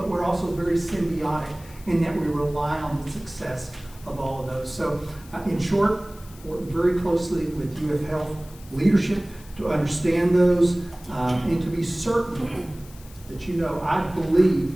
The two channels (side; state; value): left; noise; hiss, 22 dB below the sound